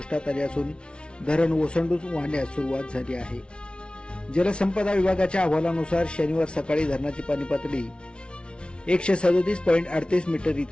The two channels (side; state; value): right; late; 0.057 ms